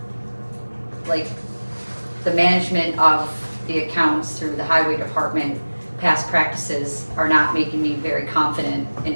like, the management of the accounts through the highway department, past practices are not making me very confident in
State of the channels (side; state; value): both; inverted; correlation -1.00